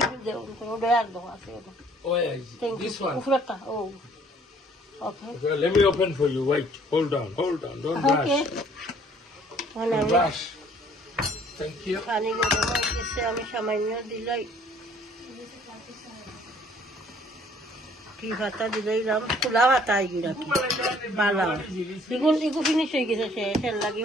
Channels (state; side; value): normal; both; correlation 0.59